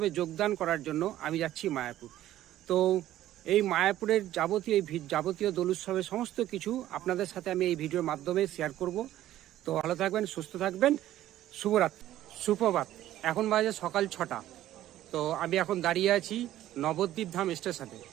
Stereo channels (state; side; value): quieter; left; 13.5 dB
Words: যোগদান করার জন্য আমি যাচ্ছি মায়াপুর। তো এই মায়াপুরের যাবতীয় দোল উৎসবের সমস্ত কিছু আপনাদের সাথে আমি এই ভিডিওর মাধ্যমে শেয়ার করব। তো ভালো থাকবেন, সুস্থ থাকবেন। শুভরাত্রি, সুপ্রভাত। এখন বাজে সকাল 6টা। তো আমি এখন দাঁড়িয়ে আছি নবদ্বীপ ধাম স্টেশনে।